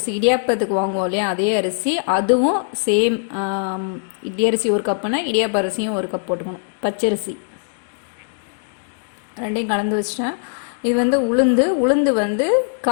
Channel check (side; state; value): right; silent; digital silence